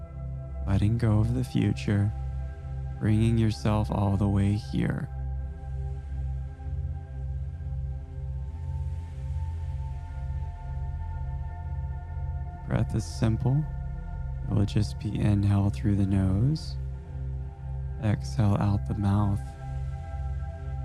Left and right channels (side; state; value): both; identical; correlation 1.00